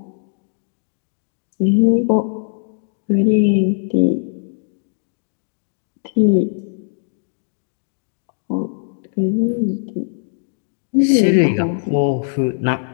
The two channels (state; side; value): silent; right; digital silence